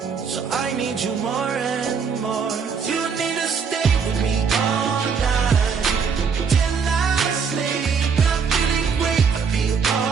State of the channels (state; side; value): quieter; left; 5.9 dB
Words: so I need you more and more. You need to stay with me all night till I sleep. I'm feeling great, I'll be